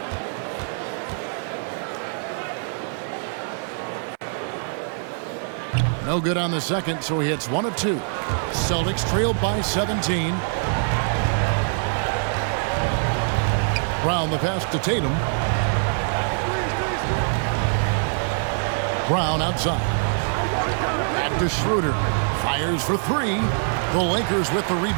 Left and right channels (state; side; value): silent; left; 63 dB below the other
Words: No good on the second, so he hits 1 of 2. Celtics trailed by 17. Brown the pass to Tatum. Brown outside. Back to Schroeder. Fires for 3. The Lakers with the